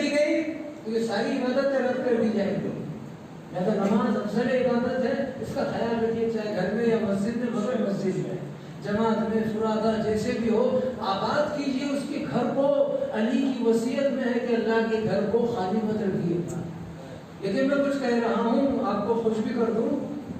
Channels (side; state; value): both; identical; correlation 1.00